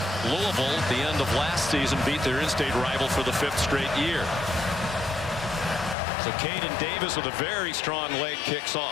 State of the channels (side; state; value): right; drops out; at 6.0 s